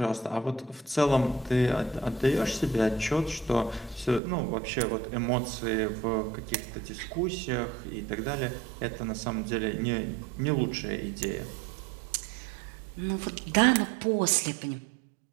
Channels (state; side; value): drops out; left; at 4.2 s